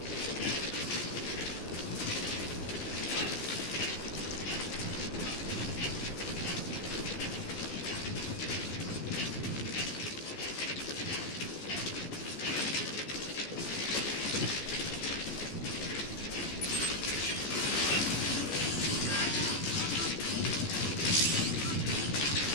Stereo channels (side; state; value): right; late; 14 ms